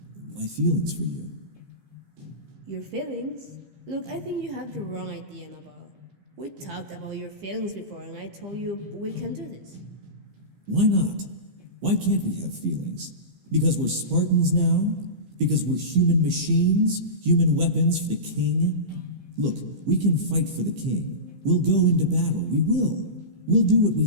my feelings for you. Your feelings? Look, I think you have the wrong idea, Nabal. We talked about your feelings before, and I told you we can do this. Why not? Why can't we have feelings? Because we're Spartans now? Because we're human machines, human weapons for the king? Look, we can fight for the king. We'll go into battle. We will. We'll do what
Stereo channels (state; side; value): late; left; 15 ms